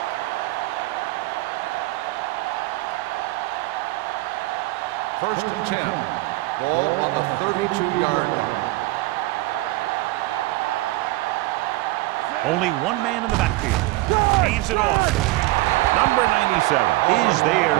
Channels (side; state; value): left; quieter; 19.7 dB